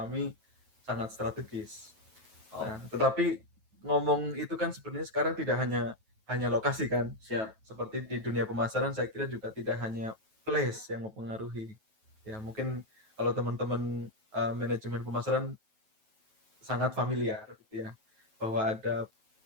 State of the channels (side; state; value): left; late; 9.2 ms